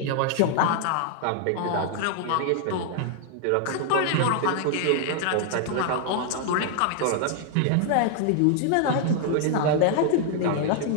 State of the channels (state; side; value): different; both; correlation 0.00